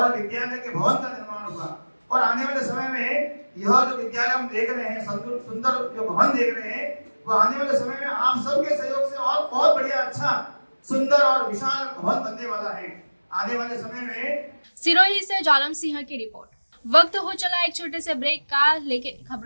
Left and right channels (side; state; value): both; inverted; correlation -1.00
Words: विद्यालय के भवन का निर्माण हुआ। और आने वाले समय में यह जो विद्यालय हम देख रहे हैं, सुंदर जो भवन देख रहे हैं, वो आने वाले समय में आप सबके सहयोग से और बहुत बढ़िया, अच्छा, सुंदर और विशाल भवन बनने वाला है आने वाले समय में। सिरोही से जालम सिंह की रिपोर्ट। वक्त हो चला एक छोटे से ब्रेक का, लेकिन